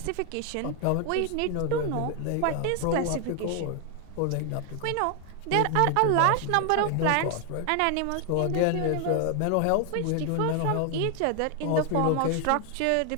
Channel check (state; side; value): different; both; correlation 0.00